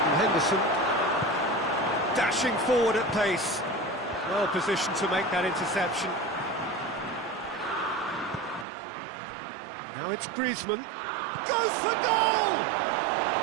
Henderson dashing forward at pace. Well positioned to make that interception. Now it's Griezmann. Goes for goal!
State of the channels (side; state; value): left; drops out; at 8.7 s